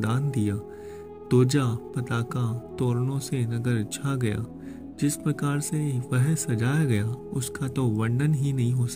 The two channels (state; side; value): identical; both; correlation 1.00